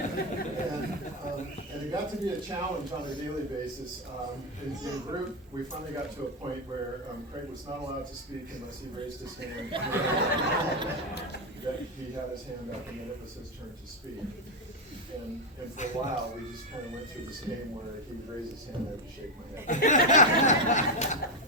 And it got to be a challenge on a daily basis. In group, we finally got to a point where Craig was not allowed to speak unless he raised his hand. That he had his hand up, and then it was his turn to speak. And for a while, we just kind of went through this game where he would raise his hand, I would shake my head.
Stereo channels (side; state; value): both; normal; correlation 0.06